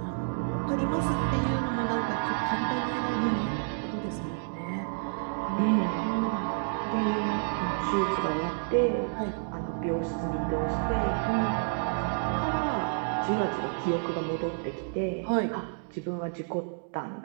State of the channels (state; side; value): silent; left; digital silence